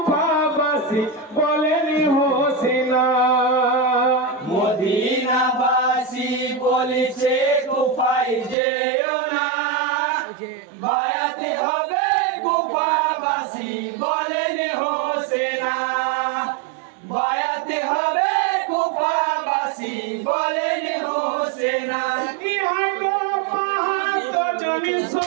বলেনি হোসেনা। মদিনাবাসী বলিছে কুফায় যেও না, বায়াতি হবে কুফাবাসী বলেনি হোসেনা, বায়াতি হবে কুফাবাসী বলেনি হোসেনা। ইহাই গো পাহাড় জনি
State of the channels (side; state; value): left; drops out; at 8.6 s